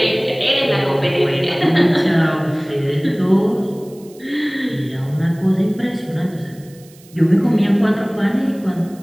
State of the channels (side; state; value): right; noise; hiss, 26 dB below the sound